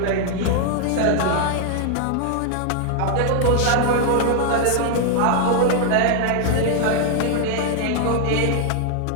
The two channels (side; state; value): both; different; correlation 0.00